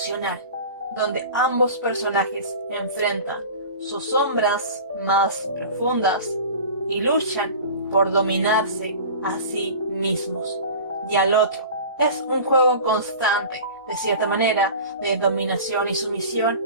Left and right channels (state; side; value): inverted; both; correlation -0.37